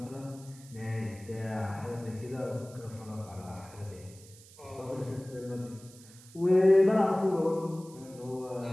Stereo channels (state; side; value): noise; right; hiss, 22 dB below the sound